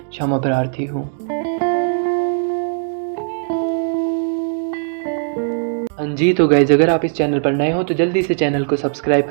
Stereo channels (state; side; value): silent; left; digital silence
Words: क्षमा प्रार्थी हूँ। हाँ जी, तो गाइज अगर आप इस चैनल पर नए हो तो जल्दी से चैनल को सब्सक्राइब